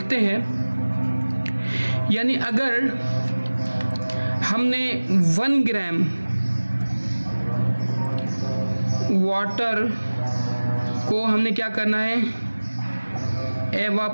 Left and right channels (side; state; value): both; inverted; correlation -1.00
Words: हैं, यानी अगर हमने 1 ग्राम वाटर को हमने क्या करना है,